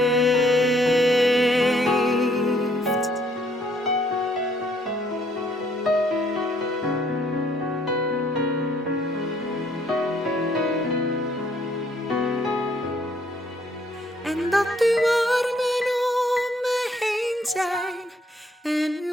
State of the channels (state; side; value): normal; both; correlation 0.65